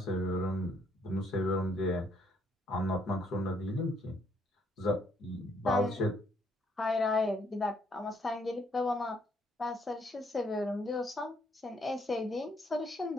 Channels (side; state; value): both; normal; correlation 0.69